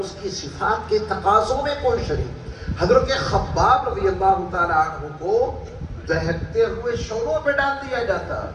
کی صفات کے تقاضوں میں کوئی شریک۔ حضرت خباب رضی اللہ تعالیٰ عنہ کو دہکتے ہوئے شعلوں پہ ڈال دیا جاتا،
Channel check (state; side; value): identical; both; correlation 1.00